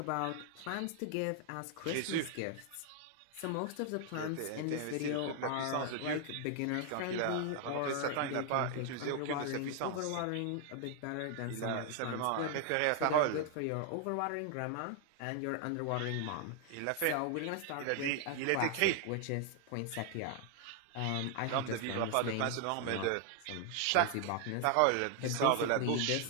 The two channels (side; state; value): both; different; correlation 0.00